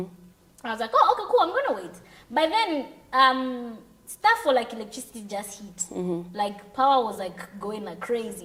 was like, oh, okay, cool, I'm gonna wait. By then, stuff for like electricity just hit. Like power was like going like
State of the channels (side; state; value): both; identical; correlation 1.00